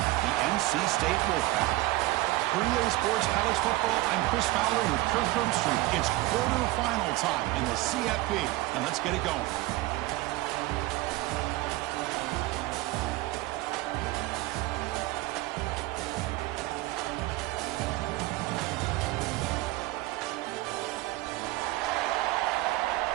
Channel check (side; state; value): left; quieter; 18.7 dB